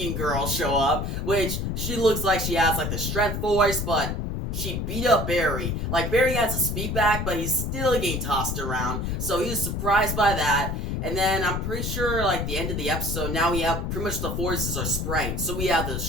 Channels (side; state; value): left; noise; rumble, 2 dB below the sound